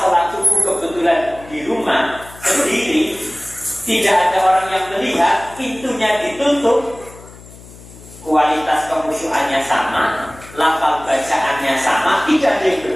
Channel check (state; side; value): noise; left; hum, 20 dB below the sound